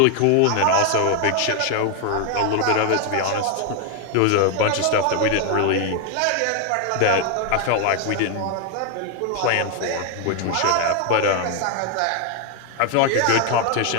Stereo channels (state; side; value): different; both; correlation 0.01